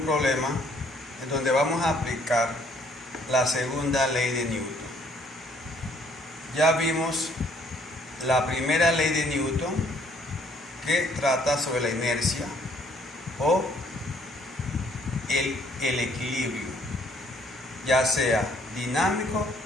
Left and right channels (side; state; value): both; normal; correlation 0.64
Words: problema en donde vamos a aplicar la segunda ley de Newton. Ya vimos la primera ley de Newton, que trata sobre la inercia o el equilibrio, ya sea dinámico